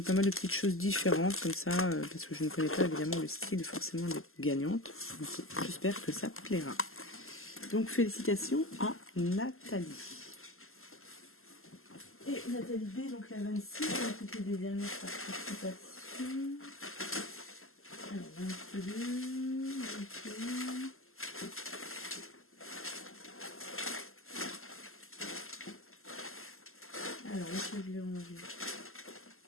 mal de petites choses différentes comme ça, parce que je ne connais pas évidemment le style forcément des gagnantes. J'espère que ça plaira. Donc félicitations à Nathalie. Et Nathalie B, donc la 26, c'était des dernières participations. Alors 22, 21. Alors, est-ce que je l'ai rangé?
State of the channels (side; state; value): right; late; 0.62 ms